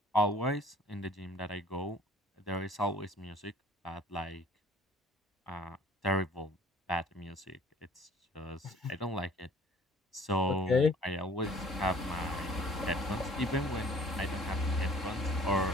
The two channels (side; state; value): both; normal; correlation 0.52